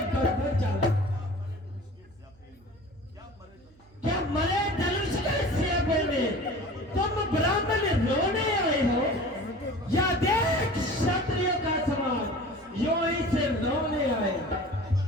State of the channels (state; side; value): noise; right; hum, 28 dB below the sound